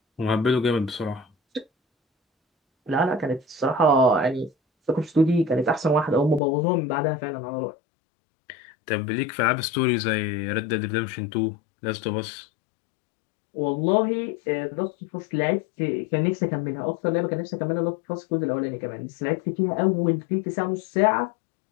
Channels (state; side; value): drops out; right; at 6.4 s